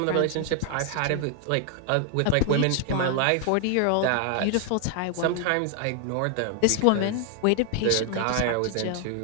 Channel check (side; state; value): both; different; correlation 0.00